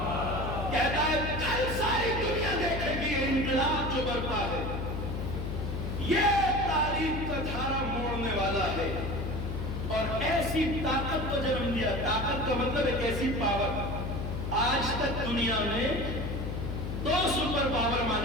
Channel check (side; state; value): left; noise; hum, 3 dB below the sound